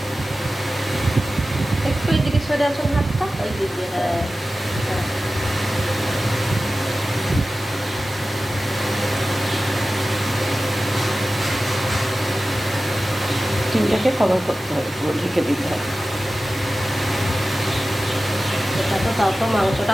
একটু এদিকে সরে আসুন হাতটা, ওই দিকে। হ্যাঁ, ডিমটাকে কভার করতে হবে, পুরো ঢেকে দিতে হবে। এটা তো তাও তো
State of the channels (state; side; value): normal; both; correlation 0.95